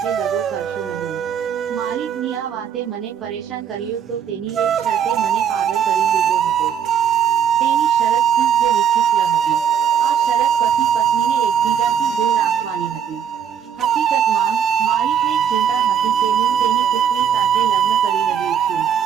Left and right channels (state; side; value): quieter; left; 8.3 dB